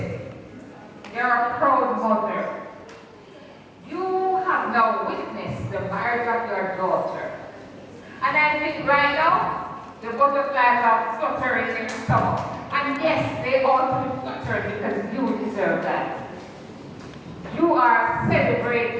you're a proud mother. You have now witnessed the marriage of your daughter. And I think right now, the butterflies are fluttering in your stomach. And yes, they ought to be fluttered because you deserve that. You are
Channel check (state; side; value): identical; both; correlation 1.00